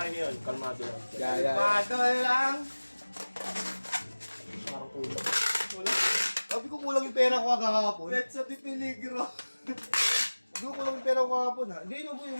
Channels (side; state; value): both; inverted; correlation -1.00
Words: ngayon? Kalmado lang. Pado lang. Parang kulang. Wala. Sabi ko kulang yung pera ko kahapon. Let's sa di peligro. Sabi ko kulang yung pera ko kahapon ha. Hindi, ano boy,